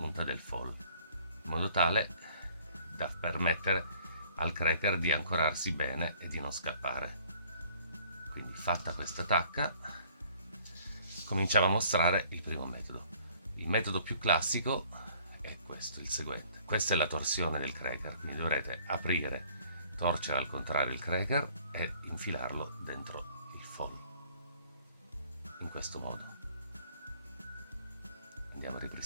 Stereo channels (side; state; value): both; inverted; correlation -0.58